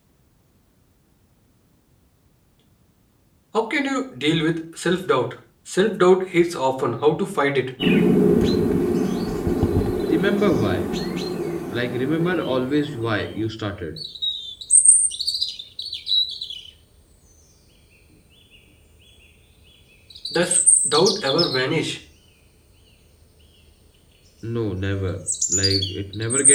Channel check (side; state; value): both; identical; correlation 1.00